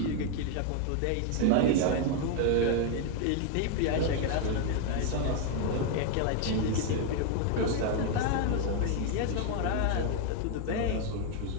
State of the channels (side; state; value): both; different; correlation 0.01